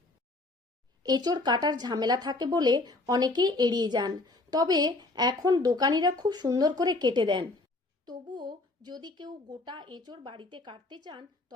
এঁচোড় কাটার ঝামেলা থাকে বলে অনেকেই এড়িয়ে যান, তবে এখন দোকানিরা খুব সুন্দর করে কেটে দেন। তবুও যদি কেউ গোটা এঁচোড় বাড়িতে কাটতে চান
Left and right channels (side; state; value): right; quieter; 3.0 dB